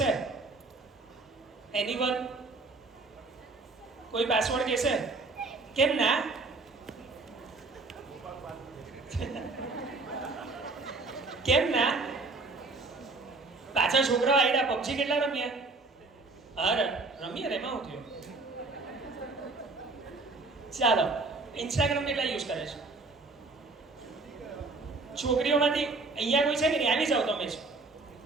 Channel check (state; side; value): quieter; left; 3.6 dB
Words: એનીવન? કોઈ પાસવર્ડ કહેશે? કેમ ના? કેમ ના? પાછા છોકરાઓ આઈડા PUBG કેટલા રમ્યા? અરે રમીએ રે, એમાં થયું. ચાલો, ઇન્સ્ટાગ્રામ કેટલા યુઝ કરે છે? છોકરીઓમાંથી અહીંયા કોઈ છે કે નહીં? આવી જાઓ તમે જ.